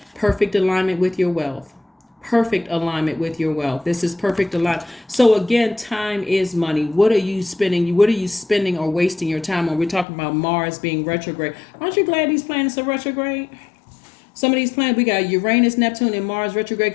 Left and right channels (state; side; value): drops out; right; at 10.1 s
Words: Perfect alignment with your wealth. Perfect alignment with your wealth. This is perfect alignment. So again, time is money. What are you spending? What are you spending or wasting your time on? We're talking about Mars being retrograde. Aren't you glad these planets are retrograde? Some of these planets, we got Uranus, Neptune, and Mars retrograde,